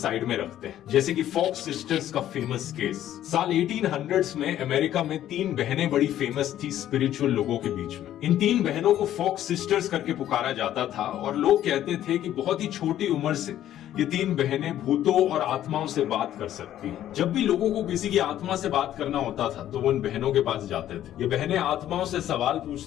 में रखते हैं, जैसे कि फॉक्स सिस्टर्स का फेमस केस। साल 1800s में अमेरिका में 3 बहनें बड़ी फेमस थी स्पिरिचुअल लोगों के बीच में। इन 3 बहनों को फॉक्स सिस्टर्स करके पुकारा जाता था और लोग कहते थे कि बहुत ही छोटी उम्र से ये 3 बहनें भूतों और आत्माओं से बात कर सकती हैं। जब भी लोगों को किसी की आत्मा से बात करना होता था तो वो इन बहनों के पास जाते थे। ये बहनें आत्माओं से सवाल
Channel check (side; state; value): right; quieter; 12.1 dB